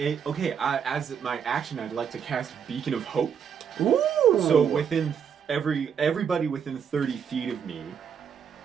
my action, I'd like to cast Beacon of Hope. Ooh! So within everybody within 30 feet of me,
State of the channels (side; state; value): left; quieter; 7.4 dB